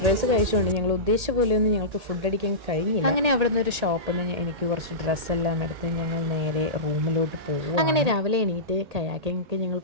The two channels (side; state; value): left; late; 1.8 ms